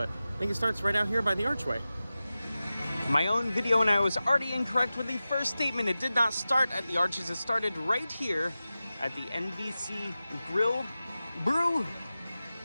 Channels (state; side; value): inverted; both; correlation -0.95